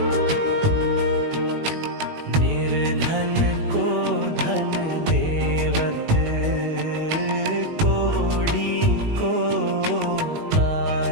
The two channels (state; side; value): late; left; 19 ms